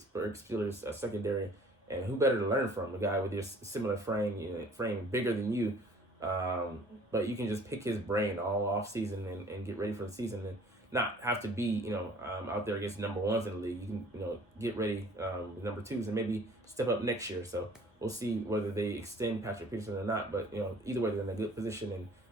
Steelers secondary. And who better to learn from? A guy with your similar frame, bigger than you. But you can just pick his brain all off season and get ready for the season and not have to be, out there against number ones in the league. You can, get ready with number twos and maybe step up next year. So we'll see whether they extend Patrick Peterson or not. But, either way, they're in a good position. And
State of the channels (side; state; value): both; normal; correlation 0.52